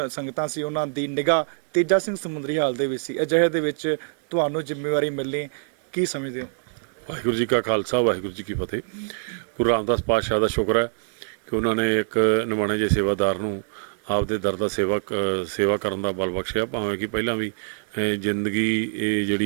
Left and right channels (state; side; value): silent; left; digital silence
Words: ਸੰਗਤਾਂ ਸੀ ਉਹਨਾਂ ਦੀ ਨਿਗਾਹ ਤੇਜਾ ਸਿੰਘ ਸਮੁੰਦਰੀ ਹਾਲ ਦੇ ਵਿੱਚ ਸੀ। ਅਜਿਹੇ ਦੇ ਵਿੱਚ ਤੁਹਾਨੂੰ ਜ਼ਿੰਮੇਵਾਰੀ ਮਿਲਣੀ ਕੀ ਸਮਝਦੇ ਹੋ? ਵਾਹਿਗੁਰੂ ਜੀ ਕਾ ਖਾਲਸਾ, ਵਾਹਿਗੁਰੂ ਜੀ ਕੀ ਫਤਿਹ। ਗੁਰੂ ਰਾਮਦਾਸ ਪਾਤਸ਼ਾਹ ਦਾ ਸ਼ੁਕਰ ਹੈ ਕਿ ਉਹਨਾਂ ਨੇ ਇੱਕ ਨਿਮਾਣੇ ਜਿਹੇ ਸੇਵਾਦਾਰ ਨੂੰ ਆਪਦੇ ਦਰ ਦਾ ਸੇਵਾ ਕਰਨ ਦਾ ਬਲ ਬਖਸ਼ਿਆ। ਭਾਵੇਂ ਕਿ ਪਹਿਲਾਂ ਵੀ ਜ਼ਿੰਦਗੀ ਇਹ